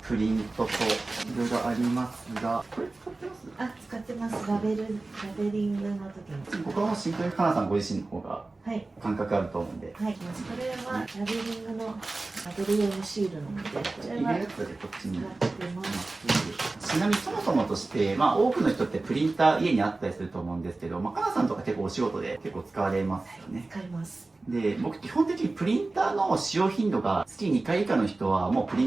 プリントといろいろありますが、これ使ってます？あ、使ってます。ラベリングの時に。ここはもうシンプルにかなさんご自身の方がはい。感覚あると思うんで、はい。これはラベリングのラベル用のシールなので、こちらは入れるやつでこっちに。使ってます。ちなみにそもそもとして、多くの人ってプリンター家にあったりすると思うんですけど、かなさんとか結構お仕事で結構使われますよね。使います。で、僕基本的にプリンターの使用頻度が月2回以下の人はもうプリ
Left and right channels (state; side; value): quieter; left; 3.3 dB